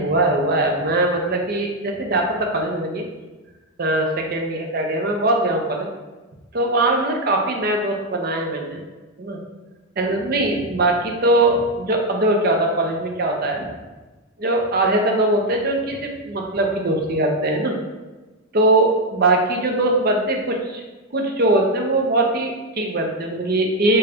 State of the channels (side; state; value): both; normal; correlation 0.04